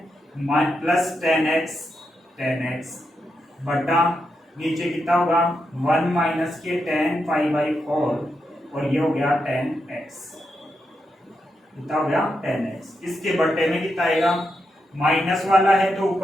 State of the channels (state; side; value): normal; both; correlation 0.84